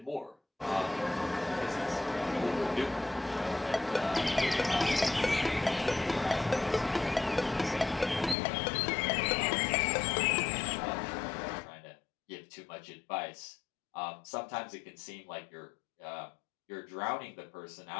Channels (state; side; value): drops out; right; at 8.3 s